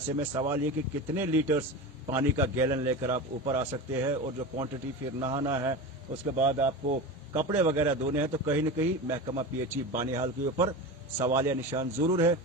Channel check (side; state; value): both; normal; correlation 0.26